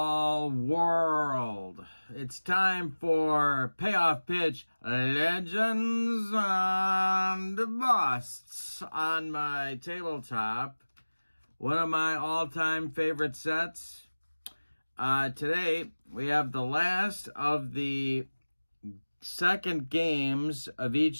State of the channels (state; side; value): inverted; both; correlation -1.00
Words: World. It's time for Payoff Pitch Legends and Busts on my tabletop. One of my all-time favorite sets. Today, we have the last of the second games of